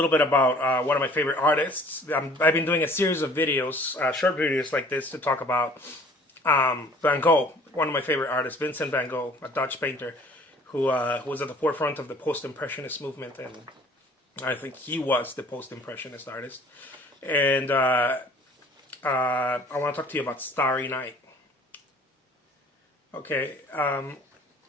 bit about one of my favorite artists. I've been doing a series of videos, short videos like this, to talk about Van Gogh, one of my favorite artists, Vincent van Gogh, a Dutch painter who was at the forefront of the post-impressionist movement, and I think he was the post-impressionist artist. And I want to talk to you about Starry Night. Okay.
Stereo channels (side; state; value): both; normal; correlation 0.52